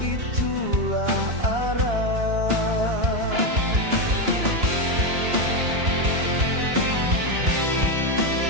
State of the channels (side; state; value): left; late; 2.9 ms